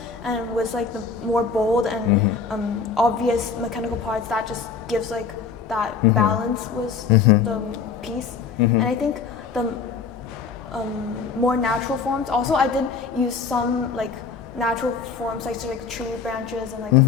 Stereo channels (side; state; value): right; quieter; 5.6 dB